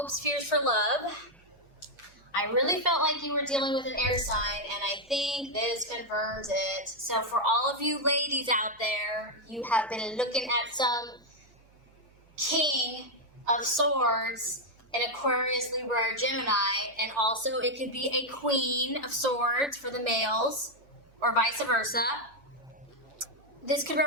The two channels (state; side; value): noise; right; hum, 29 dB below the sound